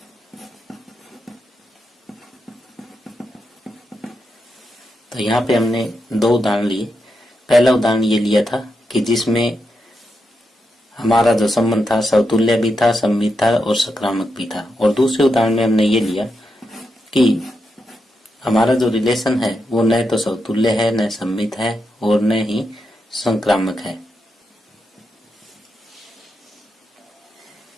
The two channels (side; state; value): both; normal; correlation 0.85